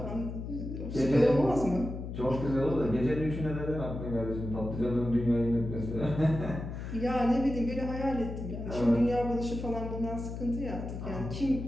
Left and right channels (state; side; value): noise; left; hum, 7 dB below the sound